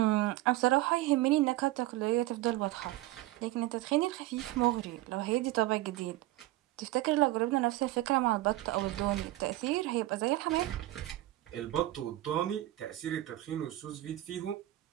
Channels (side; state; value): left; quieter; 16.7 dB